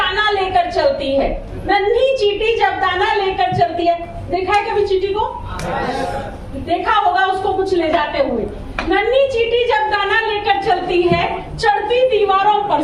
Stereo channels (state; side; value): identical; both; correlation 1.00